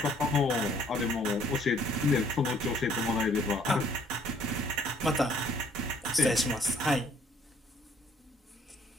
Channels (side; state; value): both; normal; correlation 0.62